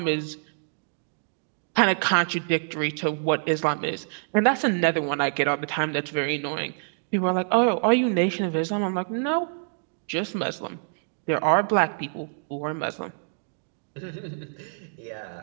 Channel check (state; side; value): silent; left; digital silence